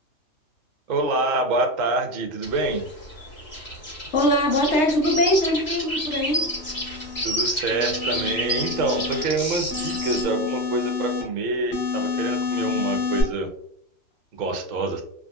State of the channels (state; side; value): late; right; 3.0 ms